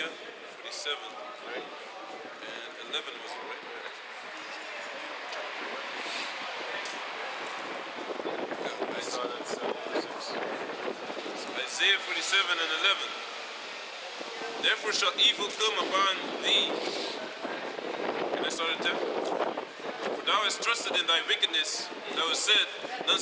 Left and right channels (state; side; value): identical; both; correlation 1.00